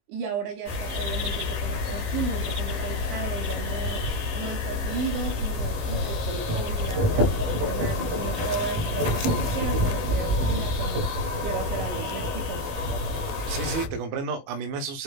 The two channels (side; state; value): left; late; 19 ms